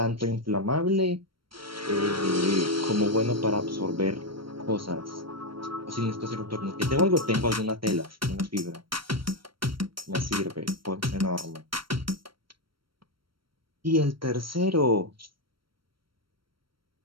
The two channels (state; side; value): late; left; 0.74 ms